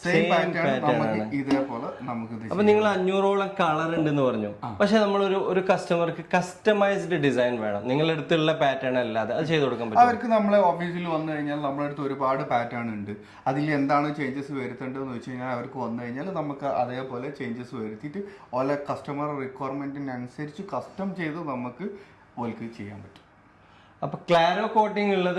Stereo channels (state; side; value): identical; both; correlation 1.00